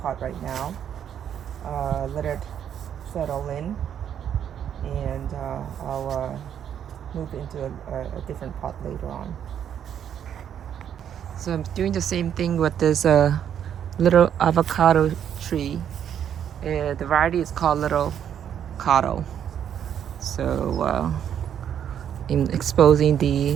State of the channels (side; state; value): left; quieter; 9.2 dB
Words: pot right now, let it settle in, and I'll move into a different pot later on. So I'm doing the same thing with this little avocado tree. The variety is called Little Cotto. So in exposing